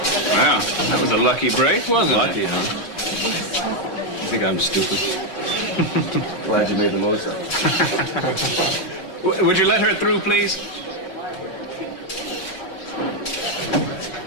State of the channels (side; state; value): right; late; 5.3 ms